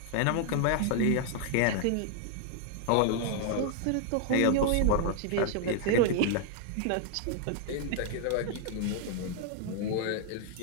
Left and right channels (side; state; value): both; different; correlation 0.00